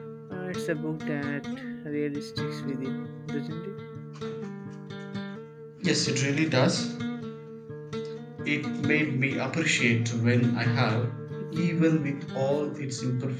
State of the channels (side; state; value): both; identical; correlation 1.00